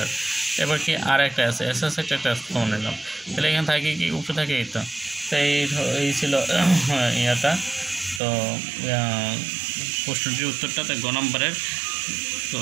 এবার কি আর একটা আছে এস এস একটা কমান নিলাম, তাহলে এখানে থাকে কি উপরে থাকে এই তো। তো এই ছিল ইয়াটা, তো প্রশ্নটির উত্তরটা তো গ নম্বরের। তো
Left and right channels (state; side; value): drops out; left; at 8.2 s